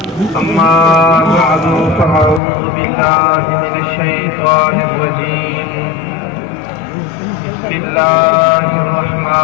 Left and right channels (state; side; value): drops out; right; at 2.4 s